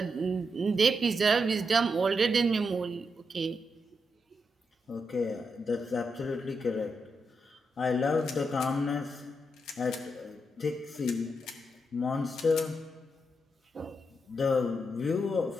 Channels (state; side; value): normal; both; correlation 0.83